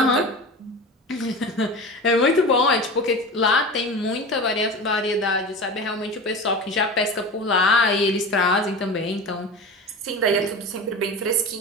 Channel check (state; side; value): normal; both; correlation 0.31